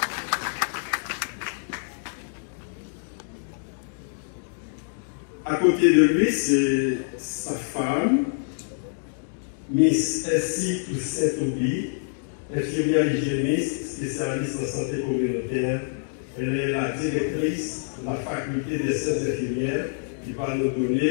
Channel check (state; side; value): silent; right; digital silence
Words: À côté de lui, c'est sa femme, Miss Essie Toussaint-Toubi, infirmière hygiéniste, spécialiste en santé communautaire. Elle est la directrice de la faculté des sciences infirmières qui va nous